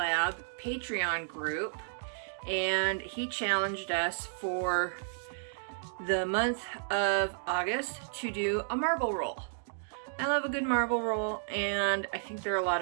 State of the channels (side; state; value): left; silent; digital silence